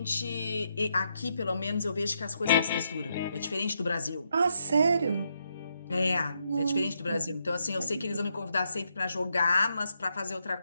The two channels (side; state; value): both; inverted; correlation -0.79